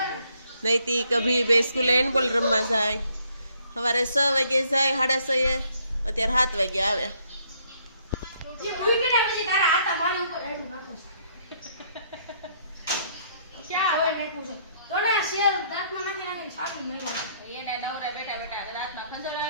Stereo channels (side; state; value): both; inverted; correlation -0.67